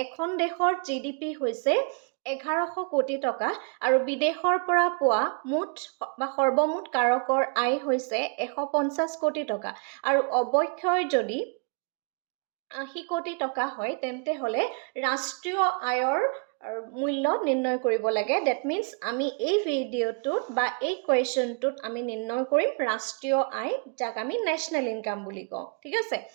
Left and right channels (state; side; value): quieter; left; 36.4 dB